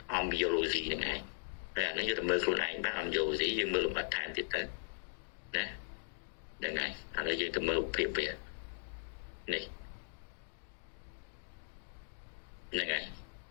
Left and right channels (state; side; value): silent; right; digital silence